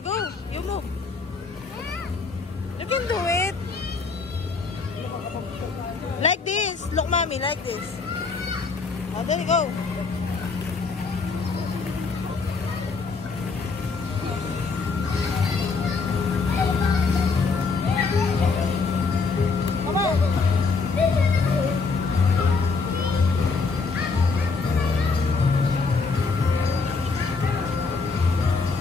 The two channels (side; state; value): right; quieter; 4.4 dB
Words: go. You move. You can do it. Like this. Look, mommy, like this. Oh, there you go.